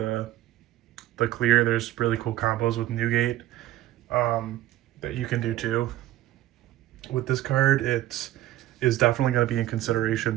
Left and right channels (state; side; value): quieter; left; 14.4 dB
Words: clear. There's really cool combos with Newgate that you can do too. With this card, it is definitely going to be in consideration